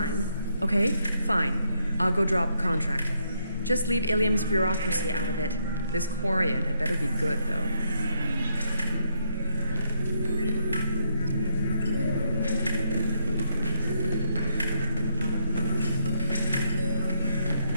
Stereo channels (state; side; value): inverted; both; correlation -0.75